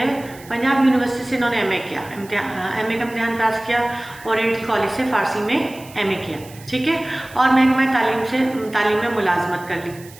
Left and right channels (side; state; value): right; noise; hiss, 21 dB below the sound